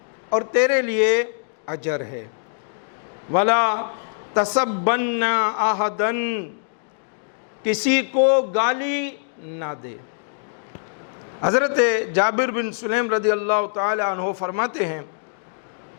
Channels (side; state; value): right; silent; digital silence